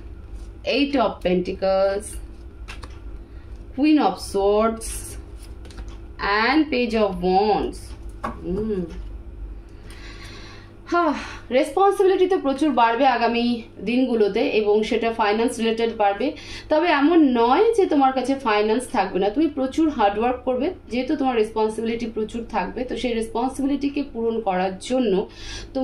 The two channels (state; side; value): identical; both; correlation 1.00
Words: 8 of Pentacles, Queen of Swords and Page of Wands. Responsibility তো প্রচুর বাড়বে আগামী দিনগুলোতে এবং সেটা ফাইন্যান্স রিলেটেড বাড়বে। তবে এমন নয় যে তোমার কাছে ফাইন্যান্স থাকবে না, তুমি প্রচুর হার্ডওয়ার্ক করবে, যেহেতু তোমার রেসপন্সিবিলিটি প্রচুর থাকবে, তো সেই রেসপন্সিবিলিটিকে পূরণ করার জন্য